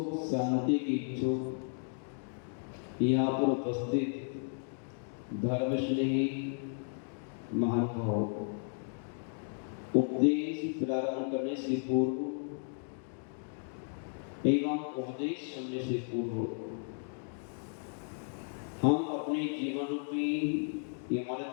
शांति की इच्छुक यहाँ पर उपस्थित धर्मस्नेही महानुभाव उपदेश प्रारंभ करने से पूर्व एवं उपदेश सुनने से पूर्व हम अपने जीवन रूपी इमारत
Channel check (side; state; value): right; silent; 55 dB below the other